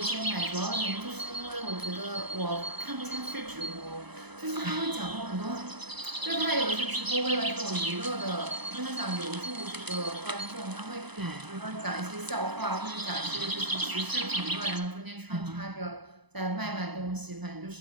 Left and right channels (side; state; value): left; late; 0.99 ms